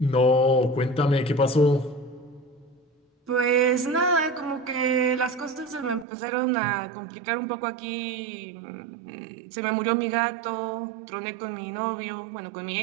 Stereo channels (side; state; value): left; drops out; at 6.1 s